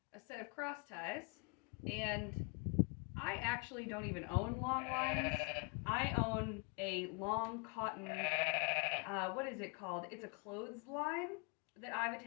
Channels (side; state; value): right; quieter; 31.6 dB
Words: a set of cross ties, and I actually don't even own long lines. I own a long cotton, what is it called? It's a clothesline that I've